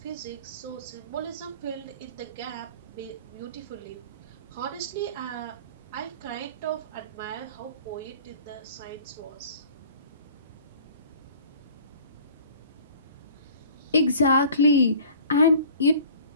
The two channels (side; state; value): both; inverted; correlation -0.47